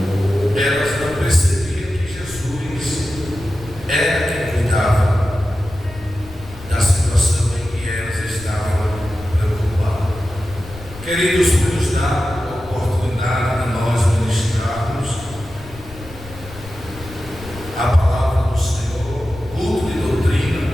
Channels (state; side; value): noise; left; rumble, 16 dB below the sound